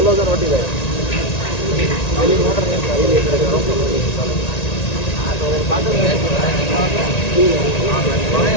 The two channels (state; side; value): late; right; 1.9 ms